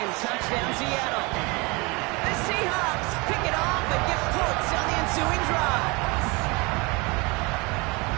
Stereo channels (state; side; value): quieter; left; 26.8 dB